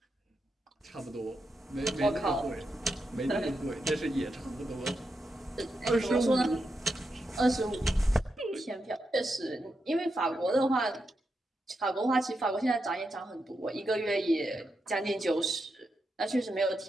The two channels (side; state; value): both; normal; correlation 0.85